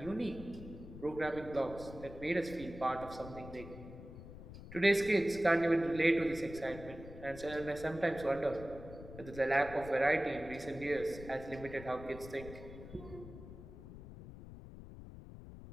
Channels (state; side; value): noise; left; rumble, 14 dB below the sound